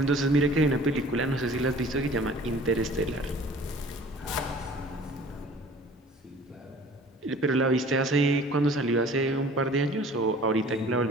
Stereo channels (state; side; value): normal; both; correlation 0.48